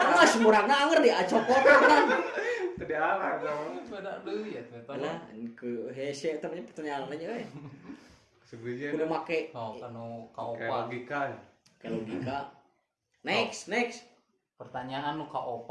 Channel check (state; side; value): identical; both; correlation 1.00